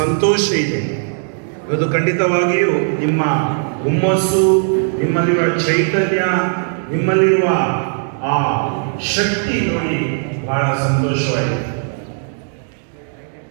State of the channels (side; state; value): left; silent; 61 dB below the other